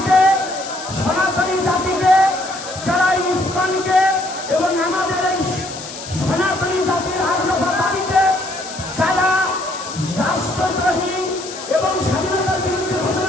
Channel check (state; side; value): noise; left; hiss, 12 dB below the sound